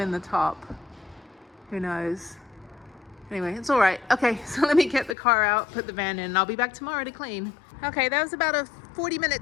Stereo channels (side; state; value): right; drops out; at 5.2 s